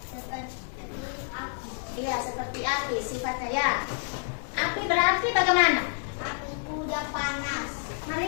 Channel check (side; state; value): right; silent; 59 dB below the other